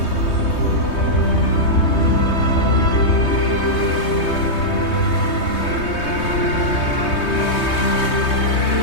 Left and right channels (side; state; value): right; late; 3.2 ms